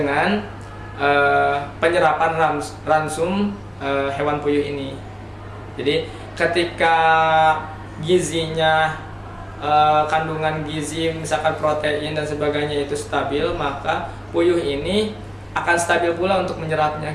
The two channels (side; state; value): both; identical; correlation 1.00